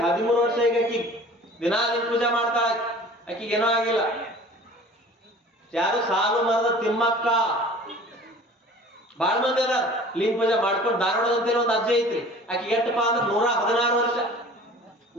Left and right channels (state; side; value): normal; both; correlation 0.45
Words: ವರ್ಷ ಈಗ ಆಕಿ ದಿನಾ ಲಿಂಗ ಪೂಜೆ ಮಾಡ್ತಾಳ. ಆಕಿಗೆ ಏನೋ ಆಗಿಲ್ಲ. ಯಾರು ಸಾಲು ಮರದ ತಿಮ್ಮಕ್ಕ ಬಾಳ ಮಂದಿ ಅದ ಲಿಂಗ ಪೂಜೆ ಮಾಡ್ಕೊಂಡು ಧಾರವಾಡದಂತೇಳಿ ಒಂದು ಅಜ್ಜೆ ಐತ್ರಿ. ಆಕೆ ಎಷ್ಟಪ್ಪ ಅಂದ್ರೆ 116 ವರ್ಷ.